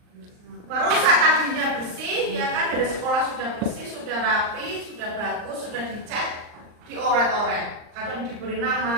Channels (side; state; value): left; late; 39 ms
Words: Merusak tadinya bersih, ya kan, dari sekolah sudah bersih, sudah rapi, sudah bagus, sudah dicat, dioret-oret. Kadang diberi